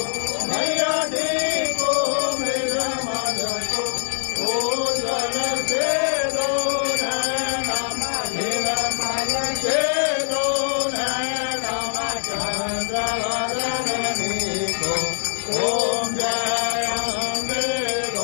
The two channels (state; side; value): silent; right; digital silence